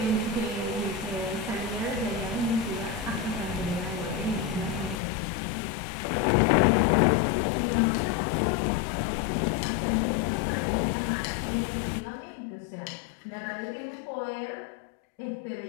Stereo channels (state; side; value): drops out; right; at 5.0 s